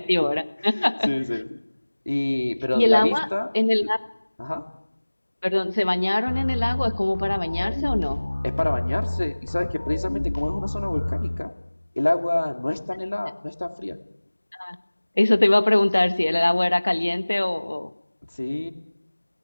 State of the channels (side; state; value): both; inverted; correlation -1.00